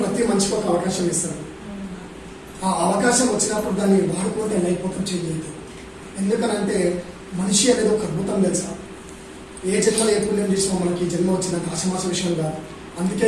మనిషికి ఒక అవకాశం ఇస్తాడు. ఆ అవకాశం వచ్చినప్పుడు దాన్ని వాడుకుంటే లైఫ్ మొత్తం చేంజ్ అవుతుంది. ఎందుకనంటే మనిషి అనేది ఒక అద్భుతం తెలుసా. ఏ జన్మలో ఏ పుణ్యం చేసినా మనకి జన్మ వచ్చినంత ఆశమాస విషయం కాదు.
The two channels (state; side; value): identical; both; correlation 1.00